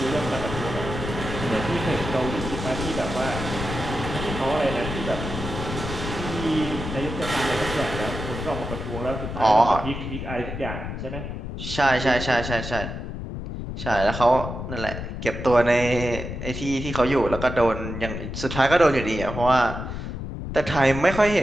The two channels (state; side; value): noise; left; rumble, 6 dB below the sound